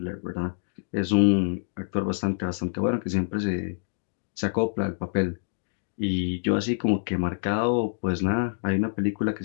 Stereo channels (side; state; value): right; silent; digital silence